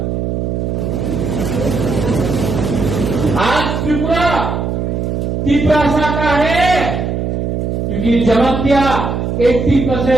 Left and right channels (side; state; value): right; noise; hum, 1 dB below the sound